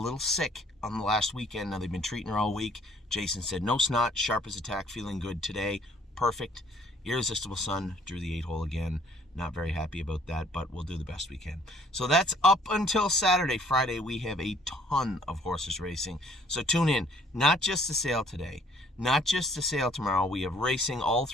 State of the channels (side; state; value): both; normal; correlation 0.60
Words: sick on the last weekend. Now, they've been treating her all week. Jason said, no snot, sharp as a tack, feeling good today. Perfect. Irresistible Sun drew the 8-hole again. Not very happy about that, but we'll do the best we can. So that's up until Saturday. Friday, we have a ton of horses racing. So tune in. Not just the sale today. Not just the sale tomorrow. We have racing all